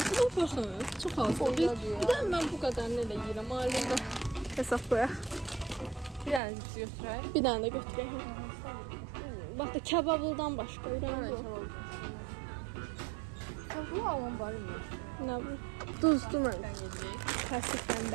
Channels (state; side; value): drops out; left; at 6.4 s